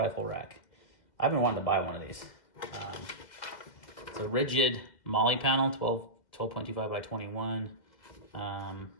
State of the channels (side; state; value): right; late; 2.0 ms